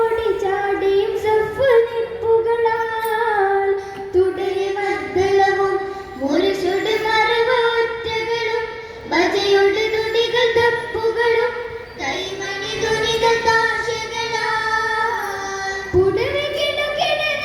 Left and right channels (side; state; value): both; identical; correlation 1.00